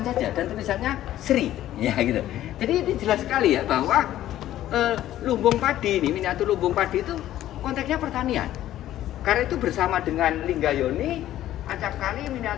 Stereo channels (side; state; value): right; quieter; 13.2 dB